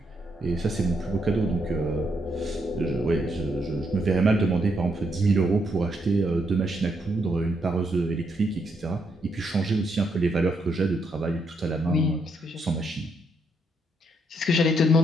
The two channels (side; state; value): both; normal; correlation 0.77